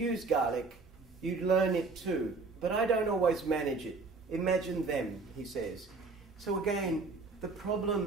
Gaelic, you learn it too. But I don't always manage it. Imagine them, he says. So again, the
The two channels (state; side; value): quieter; left; 4.0 dB